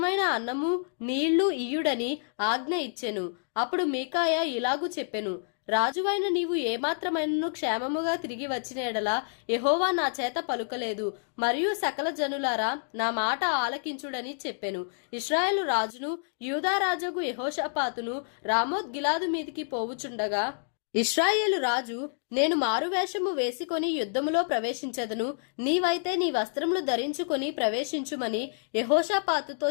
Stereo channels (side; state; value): right; silent; digital silence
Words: అన్నము నీళ్లు ఇయ్యుడని ఆజ్ఞ ఇచ్చెను. అప్పుడు మీకాయా ఇలాగు చెప్పెను, రాజువైన నీవు ఏమాత్రమైనను క్షేమముగా తిరిగి వచ్చిన ఎడల యెహోవా నా చేత పలుకలేదు, మరియు సకల జనులారా నా మాట ఆలకించుడని చెప్పెను. ఇశ్రాయేలు రాజును యూదా రాజుగు యెహోషాపాతును రామోత్ గిలాదు మీదికి పోవుచుండగా ఇశ్రాయేలు రాజు, నేను మారువేషము వేసుకొని యుద్ధములో ప్రవేశించదను, నీవైతే నీ వస్త్రములు ధరించుకొని ప్రవేశించుమని యెహోషాపాతుతో